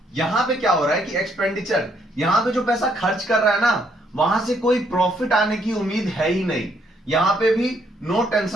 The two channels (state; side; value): normal; both; correlation 0.71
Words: यहां पे क्या हो रहा है कि एक्सपेंडिचर, यहां पे जो पैसा खर्च कर रहा है ना, वहां से कोई प्रॉफिट आने की उम्मीद है ही नहीं। यहां पे भी नो